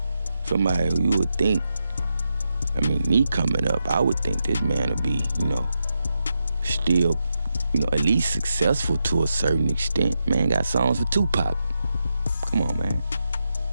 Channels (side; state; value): both; inverted; correlation -0.85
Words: Somebody who you would think, me coming up, I would think this man would be, still, at least successful to a certain extent. Man got songs for Tupac. Come on, man.